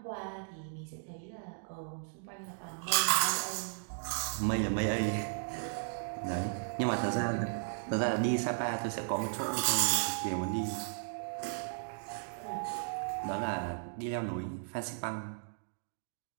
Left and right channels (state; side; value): silent; left; digital silence